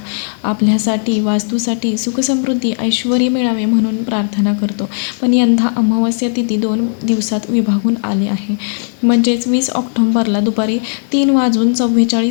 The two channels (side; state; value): right; silent; 70 dB below the other